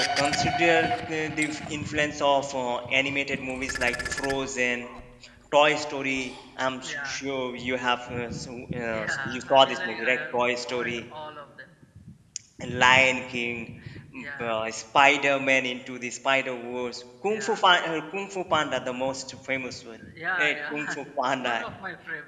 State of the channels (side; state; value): both; identical; correlation 1.00